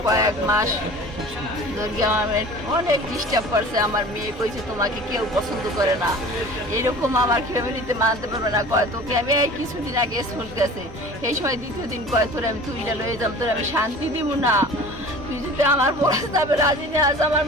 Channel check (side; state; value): both; normal; correlation 0.42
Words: কয়েক মাস ধরে আমার অনেক ডিস্টার্ব করছে। আমার মেয়ে কইছে তোমাকে কেউ পছন্দ করে না, এরকম আমার ফ্যামিলিতে মানতে পারবে না। কয় তোকে আমি কিছুদিন আগে স্কুল গেছে, এই সময় দ্বিতীয় দিন কয় তোর আমি তুইটা লয়ে যাব, তোর আমি শান্তি দিব না, তুই যদি আমার প্রস্তাবে রাজি নিয়ে আস। আমার